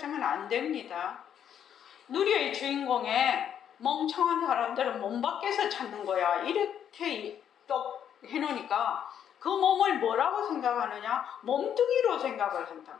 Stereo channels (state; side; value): quieter; right; 9.1 dB